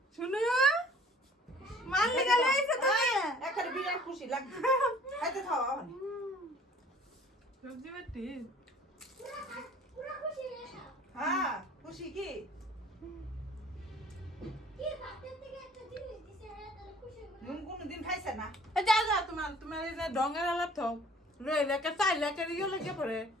শুনো মাল্লিকা লইছে তুমি এখানে বিরাট খুশি লাগছে খাইতে থাও ওখানে সবজি বাটি পুরা খুশি রে হ্যাঁ খুশি কি কি ভাতের থেকে একটা জিনিস দিছে রে তাহলে খুশি হবে নুন কোনদিন খাইছে না যা যা তোমার এই যে ডঙ্গের আলাপ থাও রইলে কে চাইলে কে ইয়ে লাগে পরে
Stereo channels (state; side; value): normal; both; correlation 0.53